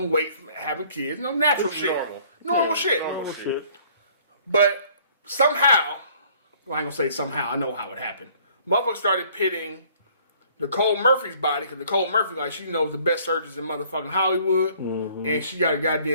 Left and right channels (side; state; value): both; inverted; correlation -0.57